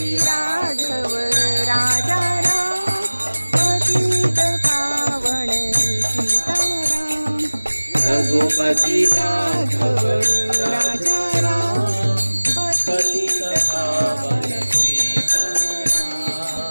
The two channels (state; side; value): inverted; both; correlation -1.00